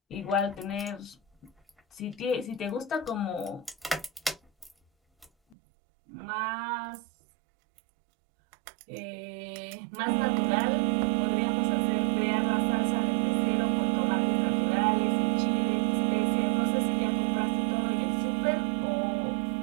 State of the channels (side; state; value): left; drops out; at 5.6 s